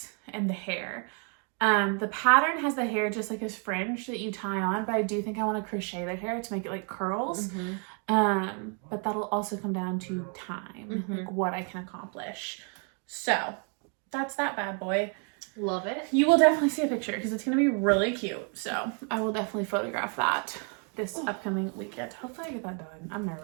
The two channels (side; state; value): left; quieter; 38.8 dB